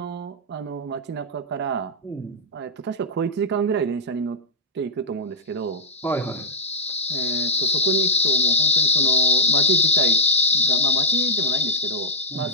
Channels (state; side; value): normal; both; correlation -0.06